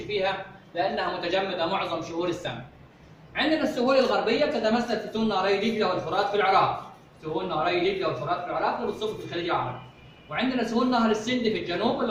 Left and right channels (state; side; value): identical; both; correlation 1.00